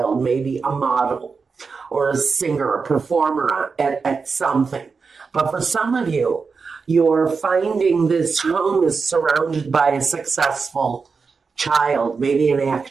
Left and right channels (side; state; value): left; quieter; 5.0 dB